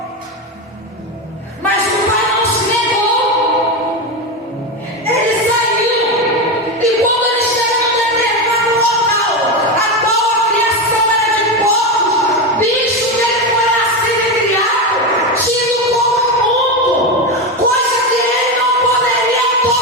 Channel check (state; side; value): normal; both; correlation 0.14